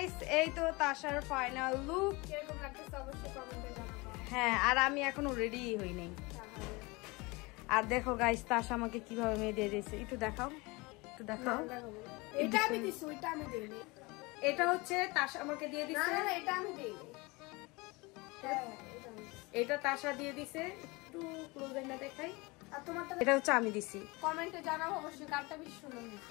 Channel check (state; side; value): quieter; right; 24.9 dB